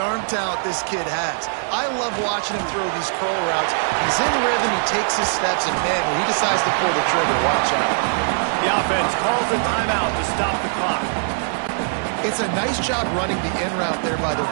talent this kid has? I love watching him throw these curl routes. He's in rhythm, he takes his steps, and man, when he decides to pull the trigger, watch out. The offense calls a timeout to stop the clock. It's a nice job running the in route there by the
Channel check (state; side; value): silent; left; digital silence